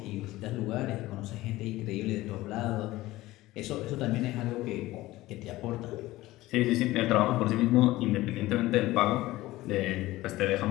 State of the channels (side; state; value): right; quieter; 17.6 dB